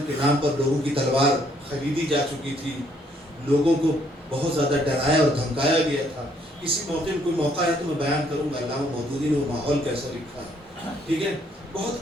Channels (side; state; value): both; normal; correlation 0.67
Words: کے نام پر لوگوں کی تلوار خریدی جا چکی تھی، لوگوں کو بہت زیادہ ڈرایا اور دھمکایا گیا تھا. کسی موقع میں کوئی موقع ہے تو میں بیان کروں گا علامہ مودودی نے وہ ماحول کیسا لکھا ہے. ٹھیک ہے،